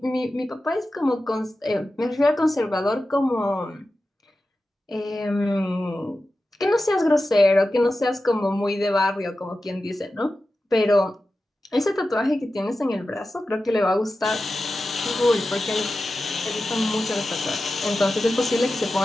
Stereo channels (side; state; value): both; normal; correlation 0.93